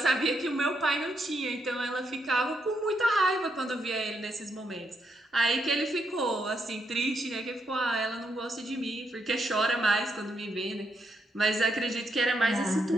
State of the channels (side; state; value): both; normal; correlation 0.78